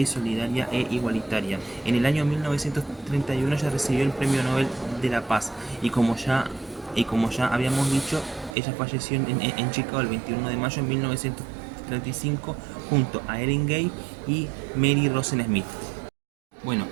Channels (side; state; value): left; drops out; at 8.6 s